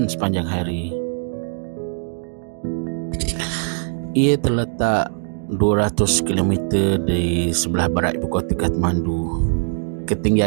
sepanjang hari. Ia terletak 200 km di sebelah barat ibu kota Kathmandu.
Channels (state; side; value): silent; left; digital silence